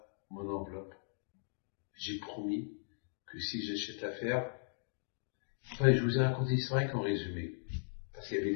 mon enveloppe. J'ai promis que si j'achète l'affaire, enfin, je vous ai raconté l'histoire qu'en résumé. Parce qu'il y avait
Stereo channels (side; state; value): right; silent; digital silence